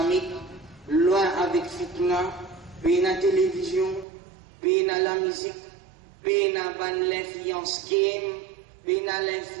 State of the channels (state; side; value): drops out; left; at 4.0 s